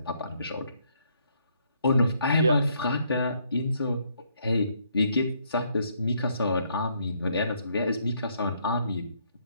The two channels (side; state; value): both; inverted; correlation -0.71